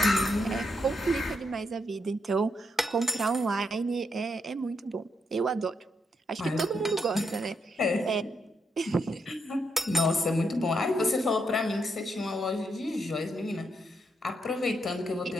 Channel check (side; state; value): both; normal; correlation 0.79